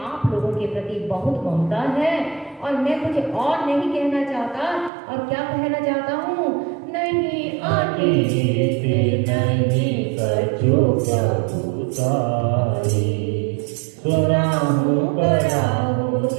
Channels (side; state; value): left; drops out; at 4.9 s